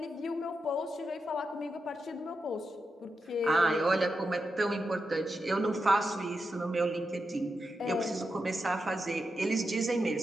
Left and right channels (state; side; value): normal; both; correlation 0.87